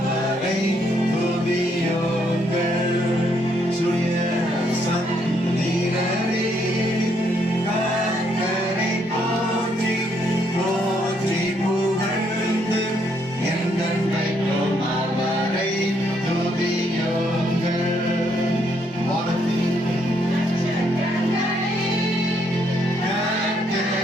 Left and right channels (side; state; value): both; normal; correlation 0.72